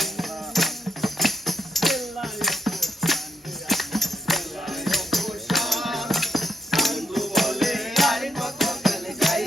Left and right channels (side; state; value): both; normal; correlation 0.77